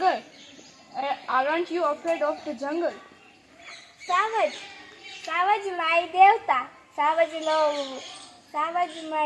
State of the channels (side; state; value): both; identical; correlation 1.00